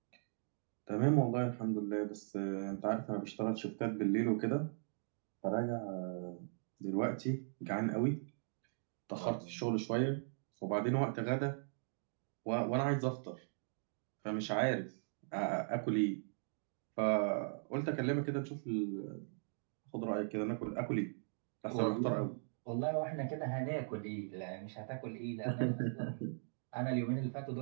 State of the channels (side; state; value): left; silent; digital silence